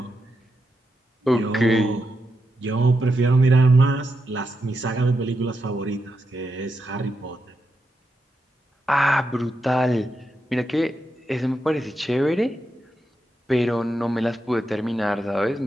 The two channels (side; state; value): both; normal; correlation 0.85